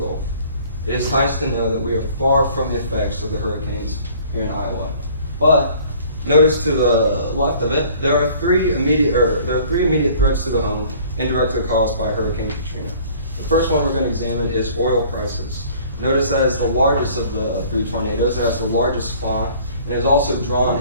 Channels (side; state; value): both; inverted; correlation -0.52